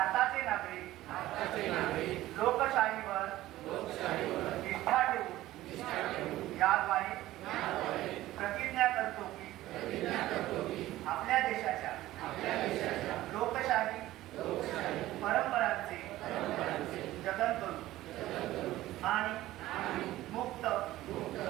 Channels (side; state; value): left; quieter; 15.8 dB